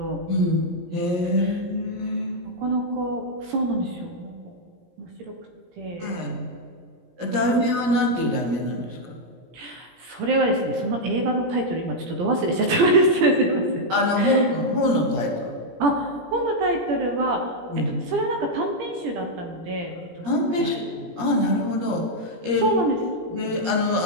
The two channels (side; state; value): left; late; 17 ms